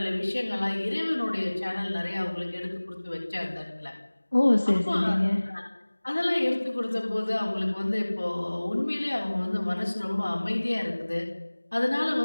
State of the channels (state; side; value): inverted; both; correlation -1.00